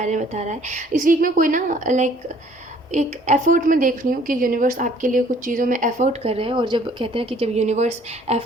में बता रहा है। इस वीक में कोई ना लाइक एक एफ़र्ट में देख रही हूँ कि यूनिवर्स आपके लिए कुछ चीज़ों में एफ़र्ट कर रहे हैं। और जब कहते हैं कि जब यूनिवर्स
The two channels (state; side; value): normal; both; correlation 0.57